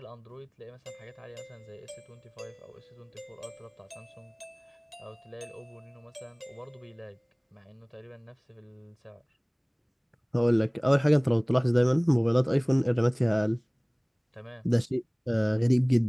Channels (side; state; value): both; identical; correlation 1.00